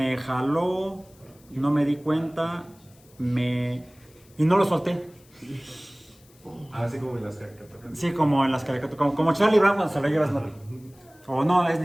jaló, no me di cuenta, y no lo solté. Así como en las caricaturas. Sí, como en las caricaturas, como Charlie Brown cuando se lo lleva Snoopy. O no, es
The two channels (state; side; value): noise; left; hiss, 29 dB below the sound